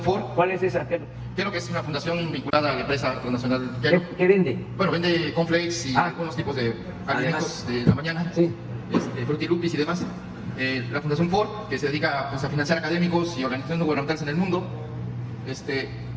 Ford. ¿Cuál es esa? Kellogg es una fundación vinculada a la empresa transnacional Kellogg. ¿Qué vende? Bueno, vende cornflakes y algunos tipos de alimentos de la mañana, Sí. Frutilupis y demás. La Fundación Ford, que se dedica pues, a financiar académicos y organizaciones no gubernamentales en el mundo.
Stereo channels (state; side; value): identical; both; correlation 1.00